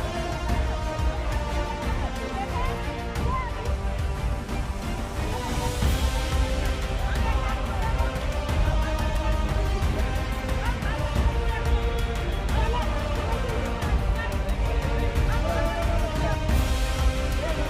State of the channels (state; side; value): identical; both; correlation 1.00